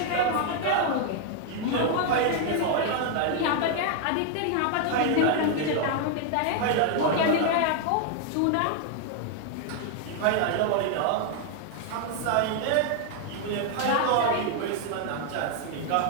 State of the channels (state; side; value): different; both; correlation 0.00